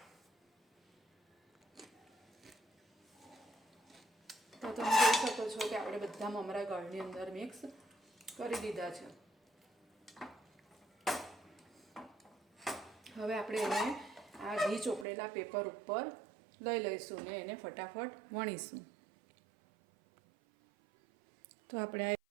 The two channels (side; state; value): left; drops out; at 15.1 s